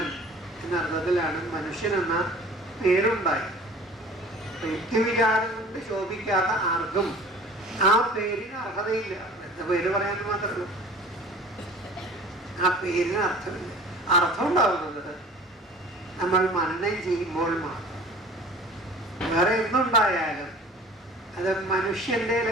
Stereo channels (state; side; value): normal; both; correlation 0.45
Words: എന്ന അർത്ഥത്തിലാണ് മനുഷ്യൻ എന്ന പേരുണ്ടായത്. യുക്തിവിചാരം കൊണ്ട് ശോഭിക്കാത്ത ആർക്കും ആ പേരിന് അർഹതയില്ല. എന്താ പേര് പറയാൻ മാത്രമേ ആ പേരിന് അർത്ഥമില്ല. അർത്ഥം ഉണ്ടാവുന്നത് നമ്മൾ മനനം ചെയ്യുമ്പോൾ മാത്രം. വേറെ എന്തുണ്ടായാലും അത് മനുഷ്യന്റെ